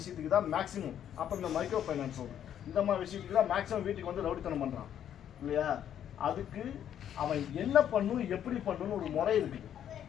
தான் மேக்ஸிமம். அப்புறம் இந்த மைக்ரோ ஃபைனான்ஸ் லோன் இந்த மாதிரி விஷயத்துக்கு தான் மேக்ஸிமம் வீட்டுக்கு வந்து ரவுடித்தனம் பண்ணுறான் இல்லையா? அதுக்கு அவன் என்ன பண்ணும், எப்படி பண்ணணும்னு ஒரு முறை இருக்குது.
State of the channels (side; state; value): right; quieter; 9.9 dB